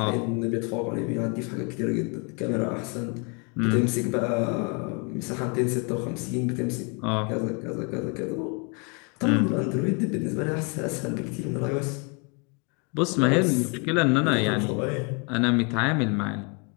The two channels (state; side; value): quieter; right; 33.3 dB